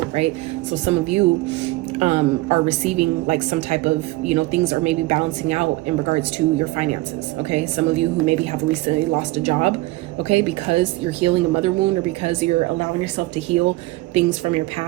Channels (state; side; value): quieter; left; 19.8 dB